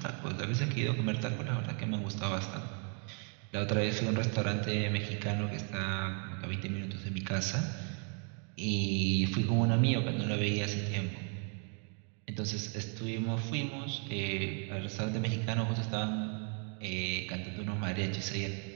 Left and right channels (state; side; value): quieter; left; 39.7 dB